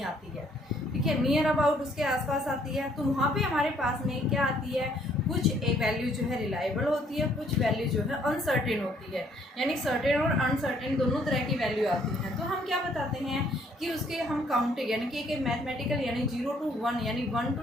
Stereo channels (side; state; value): both; normal; correlation 0.65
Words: आती है, ठीक है, नियर अबाउट उसके आसपास आती है। तो वहाँ पे हमारे पास में क्या आती है, कुछ एक वैल्यू जो है रिलायबल होती है, कुछ वैल्यू जो है अनसर्टेन होती है, यानी सर्टेन और अनसर्टेन दोनों तरह की वैल्यू आती हैं। तो हम क्या बताते हैं कि उसके हम काउंटिंग, यानी कि एक मैथमेटिकल, यानी 0 to 1 यानी 1